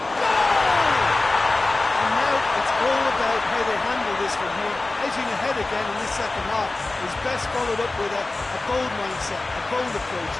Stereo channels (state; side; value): quieter; right; 3.1 dB